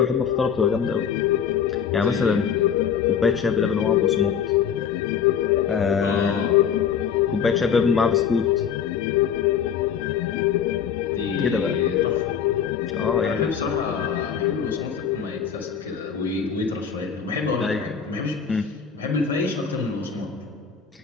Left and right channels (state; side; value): quieter; right; 7.5 dB